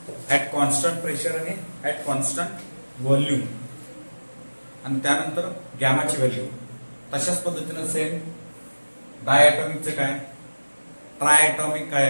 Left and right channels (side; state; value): both; inverted; correlation -1.00